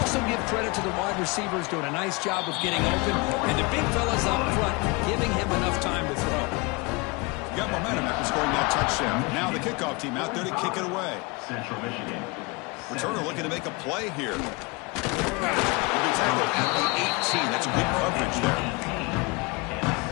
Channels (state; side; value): quieter; right; 27.4 dB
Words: give credit to the wide receivers doing a nice job of getting open, and the big fellas up front giving him enough time to throw. Got momentum after scoring that touchdown. Now the kickoff team out there to kick it away. Central Michigan. Returner looking to make a play here. He'll be tackled at the 18. That's good coverage there.